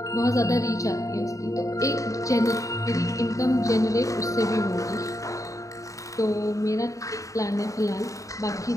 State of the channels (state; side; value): late; right; 0.16 ms